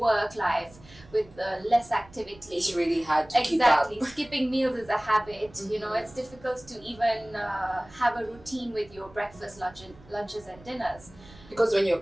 life, with less activity. It's really hard to keep up. Exactly. Skipping meals is a habit. Mm-hmm. It's difficult to even have a routine with your breakfast, lunches and dinners. Because when you're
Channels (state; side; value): noise; right; rumble, 23 dB below the sound